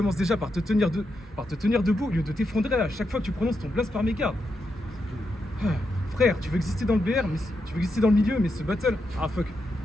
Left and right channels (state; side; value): normal; both; correlation 0.84